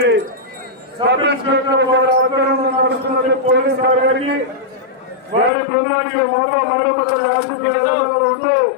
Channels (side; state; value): right; drops out; at 5.5 s